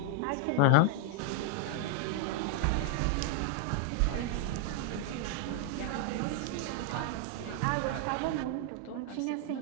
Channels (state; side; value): different; both; correlation 0.00